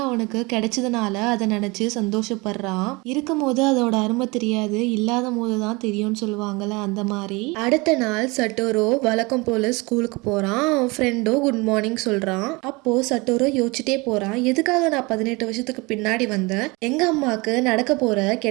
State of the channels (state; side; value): quieter; left; 25.6 dB